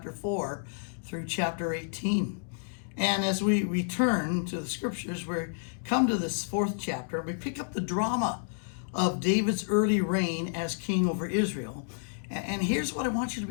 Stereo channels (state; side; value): silent; right; digital silence